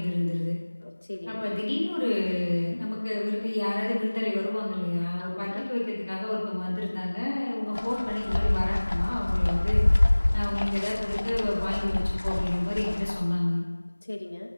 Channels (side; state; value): both; inverted; correlation -1.00